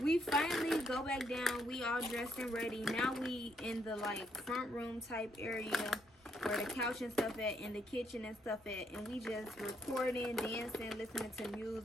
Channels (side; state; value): both; normal; correlation 0.74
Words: we finally go back down. We all dressed and ready. Now we in the like front room type area where the couch and stuff at, and the kitchen and stuff at, and we just recording, dancing, listening to